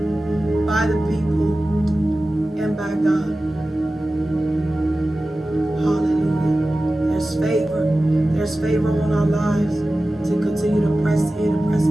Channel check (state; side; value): normal; both; correlation 0.95